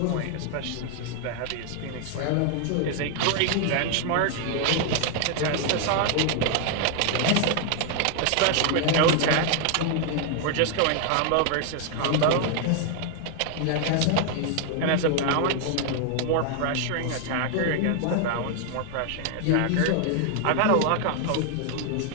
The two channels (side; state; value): both; different; correlation 0.00